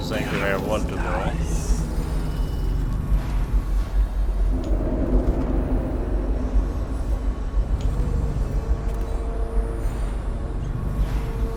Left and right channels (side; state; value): both; identical; correlation 1.00